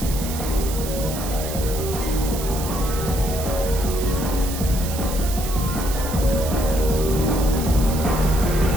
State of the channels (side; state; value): right; noise; hiss, 9 dB below the sound